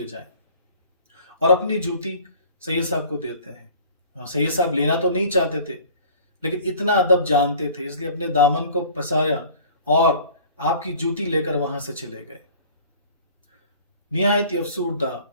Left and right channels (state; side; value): inverted; both; correlation -0.48